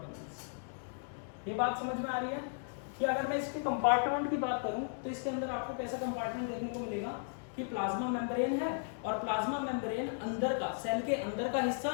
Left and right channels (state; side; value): silent; right; digital silence